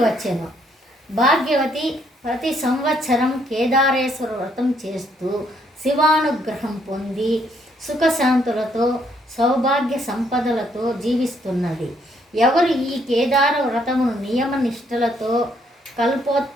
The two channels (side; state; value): both; normal; correlation 0.70